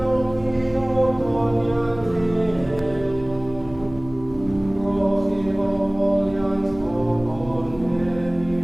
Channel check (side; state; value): left; noise; hum, 17 dB below the sound